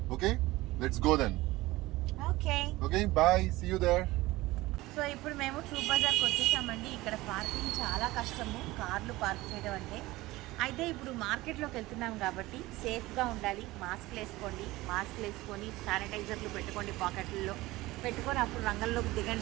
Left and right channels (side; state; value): left; quieter; 19.1 dB